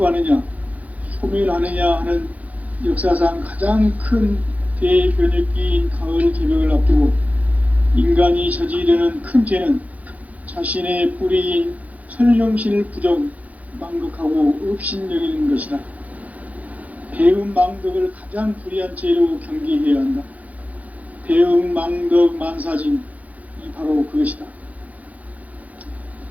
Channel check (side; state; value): left; late; 0.073 ms